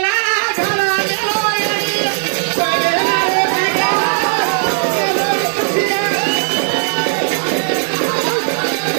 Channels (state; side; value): silent; left; digital silence